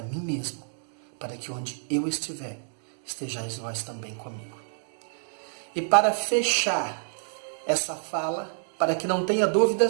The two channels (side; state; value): left; silent; digital silence